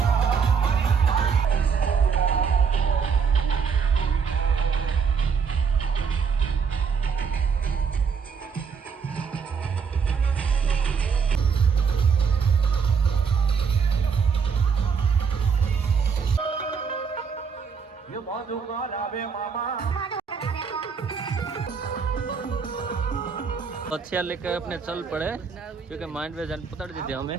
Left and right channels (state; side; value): quieter; left; 6.1 dB